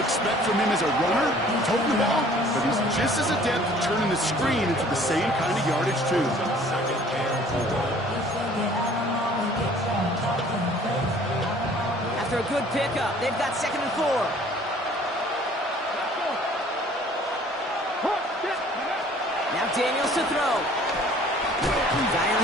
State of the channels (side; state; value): both; normal; correlation 0.53